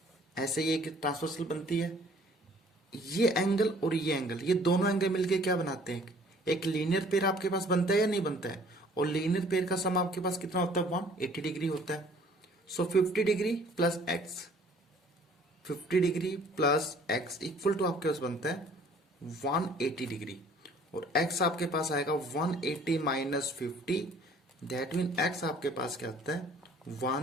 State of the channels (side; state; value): both; normal; correlation 0.55